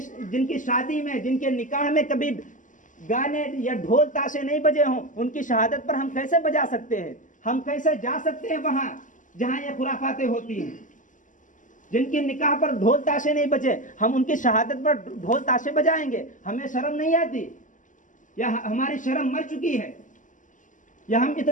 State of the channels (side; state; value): right; late; 0.37 ms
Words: शादी में, जिनके निकाह में कभी गाने या ढोल ताशे नहीं बजे हों, उनकी शहादत पर हम कैसे बजा सकते हैं? हम कैसे जा सकते हैं वहां जहां ये खुराफातें होती हैं? जिनके निकाह पर ढोल ताशे नहीं बजे, हम उनकी शहादत पर ढोल ताशे बजाएंगे? हमें शर्म नहीं आती? या हमारी शर्म मर चुकी है? या हम